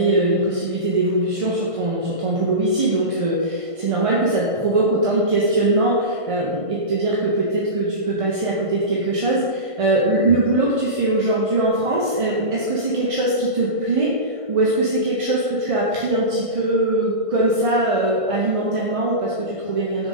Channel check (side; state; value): left; late; 1.5 ms